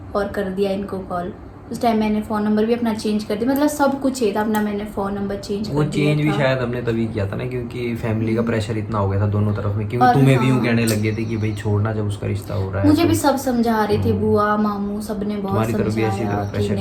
और कर दिया इनको कॉल। उस टाइम मैंने फ़ोन नंबर भी अपना चेंज कर दिया, मतलब सब कुछ ही था अपना, मैंने फ़ोन नंबर चेंज वो कर दिया चेंज भी था। शायद हमने तभी किया था ना, क्योंकि फैमिली का प्रेशर इतना हो गया था दोनों तरफ में, क्योंकि और तुम्हें भी यूँ हाँ। कहने लगे थे कि भाई छोड़ना जब उसका रिश्ता हो रहा है। मुझे तो भी सब समझा रहे थे, बुआ मामू सबने बहुत तुम्हारी तरफ भी ऐसी समझाया तरफ कि प्रेशर कर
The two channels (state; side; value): identical; both; correlation 1.00